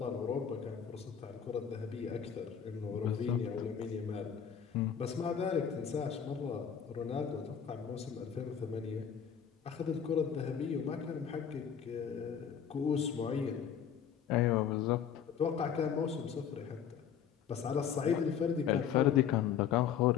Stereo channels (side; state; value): right; quieter; 8.0 dB